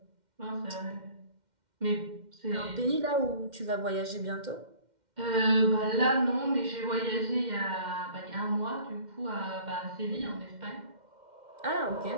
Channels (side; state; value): left; late; 2.1 ms